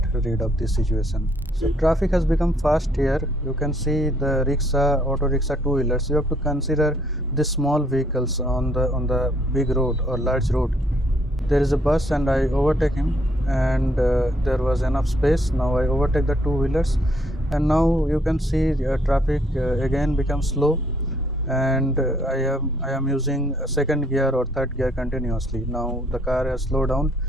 rid of this situation. So traffic has become fast here. You can see the rickshaw, auto rickshaw, two-wheelers. You have to consider the small vehicles on the big road or large road. There is a bus and I overtake him, and there was enough space. Now I overtake the two-wheelers, and now you can see traffic again becomes slow, and I am using second gear or third gear continuously. Now the car has slowed down,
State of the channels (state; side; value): normal; both; correlation 0.67